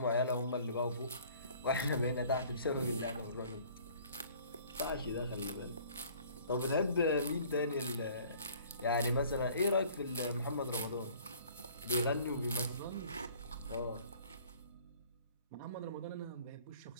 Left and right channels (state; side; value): inverted; both; correlation -0.53